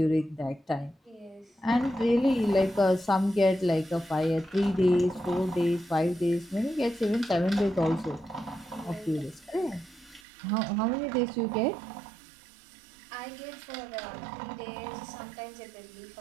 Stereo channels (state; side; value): drops out; left; at 10.2 s